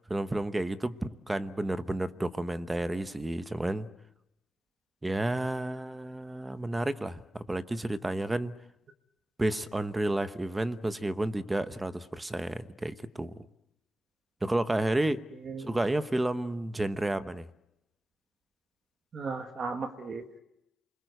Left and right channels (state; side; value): normal; both; correlation 0.96